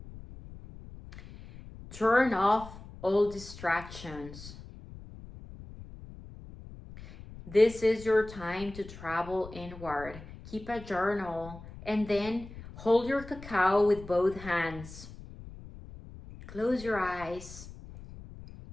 Turn off all distractions. This is your time to travel inward. Keep a journal and then hold your cacao with both hands. Close your eyes.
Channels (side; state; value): left; noise; rumble, 15 dB below the sound